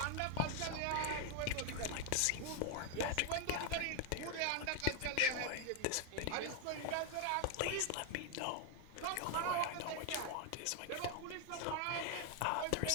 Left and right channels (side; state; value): both; different; correlation 0.01